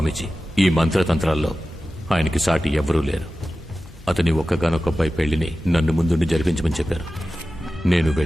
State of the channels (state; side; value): normal; both; correlation 0.94